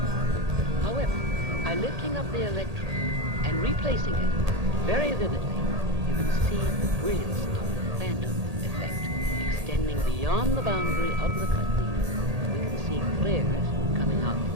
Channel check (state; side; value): late; left; 1.8 ms